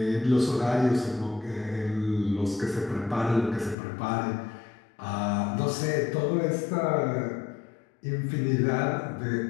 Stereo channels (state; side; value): drops out; right; at 3.8 s